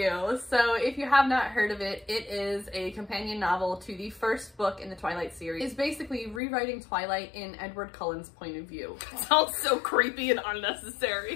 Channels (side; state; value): right; drops out; at 6.4 s